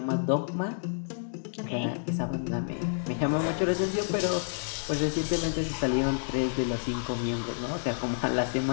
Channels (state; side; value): silent; right; digital silence